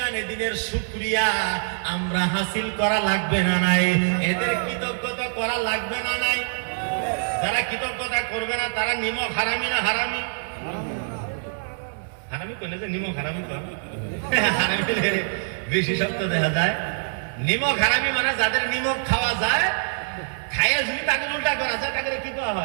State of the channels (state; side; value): silent; left; digital silence